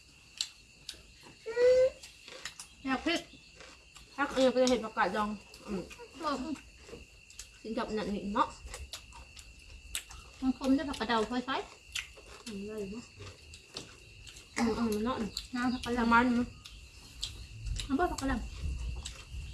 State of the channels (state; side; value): identical; both; correlation 1.00